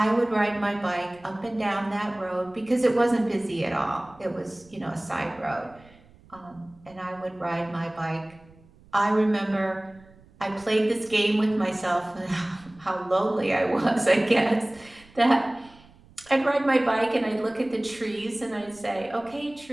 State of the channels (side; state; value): right; noise; rumble, 26 dB below the sound